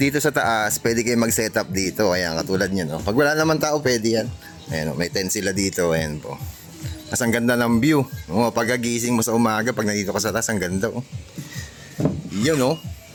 sa taas, pwede kayo mag-set up dito. Ayan, katulad nyo, no? Pag wala naman tao, pwede yan. Ayan, may tent sila dito. Ayan po. Mas ang ganda ng view. Oh, pagkagising mo sa umaga, pag nandito ka sa taas, ang ganda. Oh. Yun, oh.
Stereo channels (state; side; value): identical; both; correlation 1.00